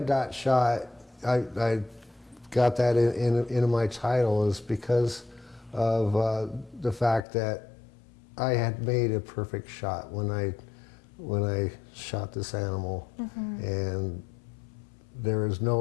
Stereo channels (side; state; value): right; drops out; at 7.2 s